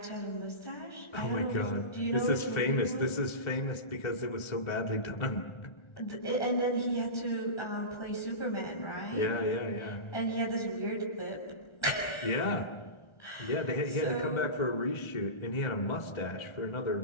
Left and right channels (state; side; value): late; right; 1.3 ms